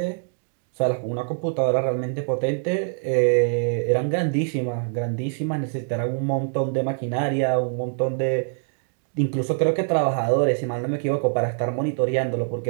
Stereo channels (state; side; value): silent; left; digital silence